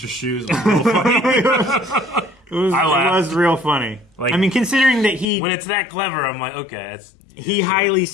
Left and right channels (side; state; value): right; drops out; at 5.2 s